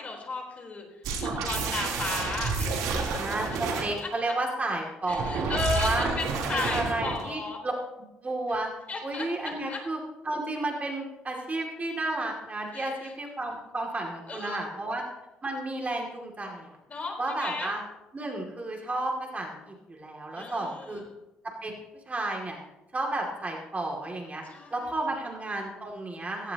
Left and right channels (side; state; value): both; normal; correlation 0.70